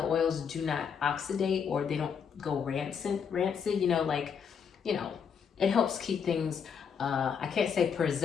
oils do not oxidate or they don't go rancid, it helps keep things, I can't say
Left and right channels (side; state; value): right; quieter; 6.9 dB